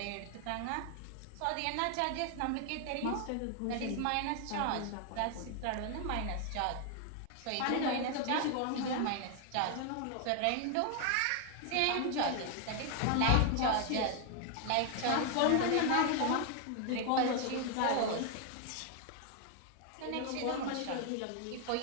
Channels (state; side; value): different; both; correlation 0.00